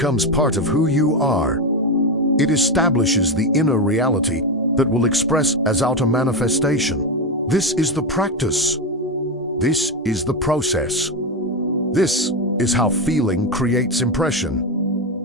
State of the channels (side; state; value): both; normal; correlation 0.12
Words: part of who you are. It establishes the inner reality that will express as outer manifestation. This is the practice. This is the process. This is how feeling creates impression.